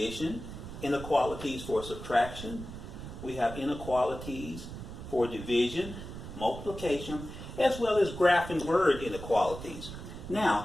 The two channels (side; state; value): right; noise; rumble, 10 dB below the sound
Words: inequalities for subtraction, we have inequalities for division, multiplication, as well as graph and word inequalities.